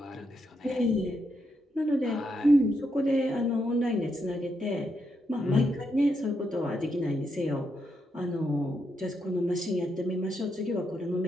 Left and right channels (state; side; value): normal; both; correlation 0.81